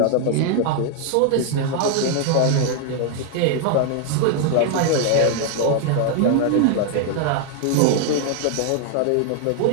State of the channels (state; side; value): different; both; correlation 0.00